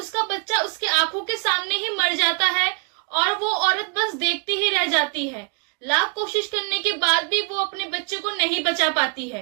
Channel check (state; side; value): quieter; left; 34.6 dB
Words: बच्चा उसके आंखों के सामने ही मर जाता है और वो औरत बस देखती ही रह जाती है। लाख कोशिश करने के बाद भी वो अपने बच्चे को नहीं बचा पाती